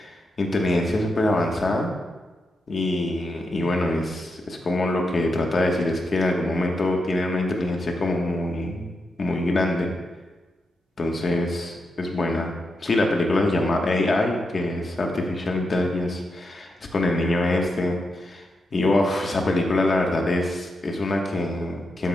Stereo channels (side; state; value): both; normal; correlation 0.85